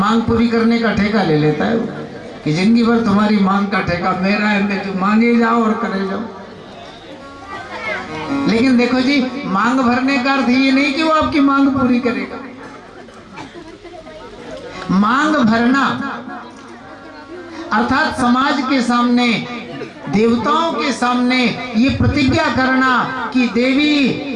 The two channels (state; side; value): identical; both; correlation 1.00